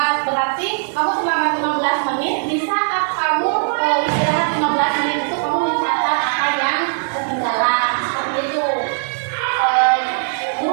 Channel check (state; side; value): silent; left; digital silence